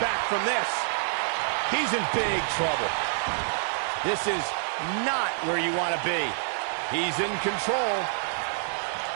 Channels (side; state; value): left; silent; digital silence